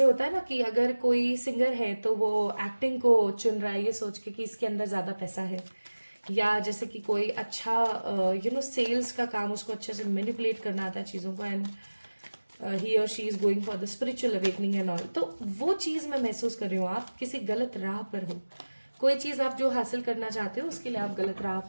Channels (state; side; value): inverted; both; correlation -1.00